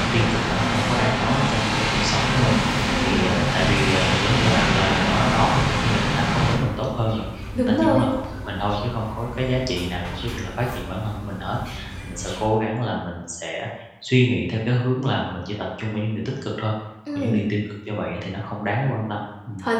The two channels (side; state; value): both; identical; correlation 1.00